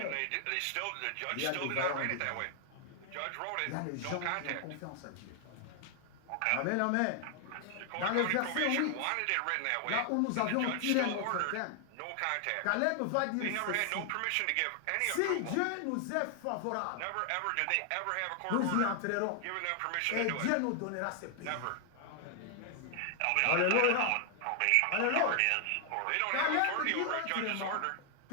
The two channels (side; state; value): both; different; correlation 0.00